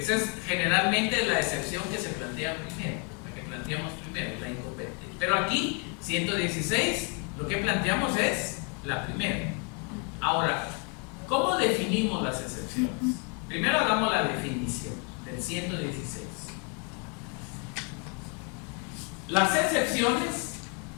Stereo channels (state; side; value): quieter; right; 34.6 dB